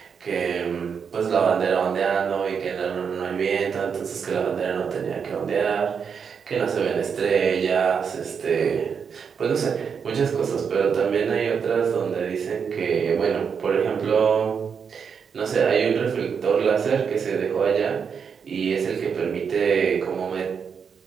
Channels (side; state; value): left; quieter; 6.6 dB